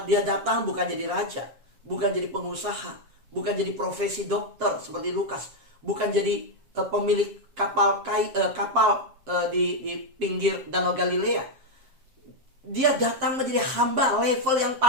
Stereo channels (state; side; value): late; left; 7.5 ms